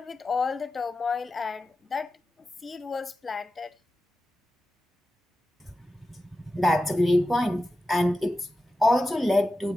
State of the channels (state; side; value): normal; both; correlation 0.92